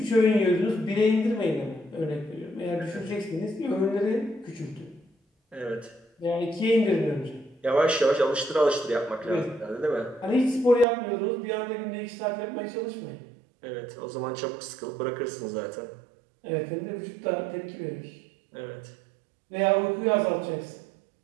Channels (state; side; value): drops out; left; at 10.9 s